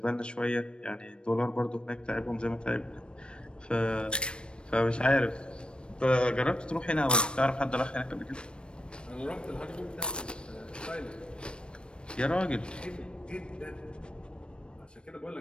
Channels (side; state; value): right; late; 0.056 ms